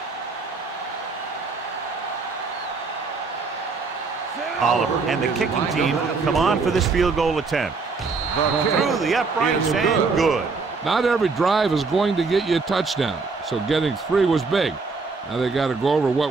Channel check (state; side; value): quieter; left; 4.4 dB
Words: Oliver and the kicking team come on for this field goal attempt. Through the uprights and good. Not every drive is going to get you a touchdown, so getting 3 was big. Now they got to go over